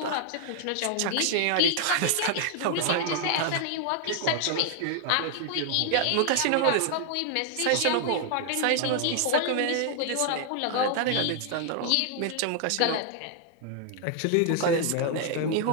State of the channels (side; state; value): both; different; correlation 0.00